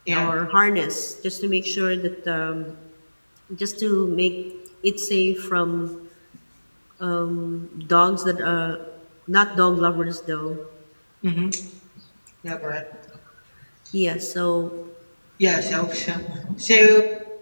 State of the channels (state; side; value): inverted; both; correlation -1.00